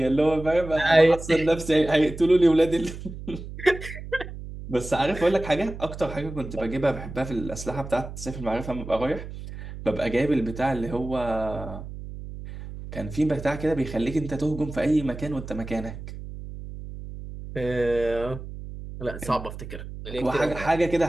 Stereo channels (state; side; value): noise; right; hum, 11 dB below the sound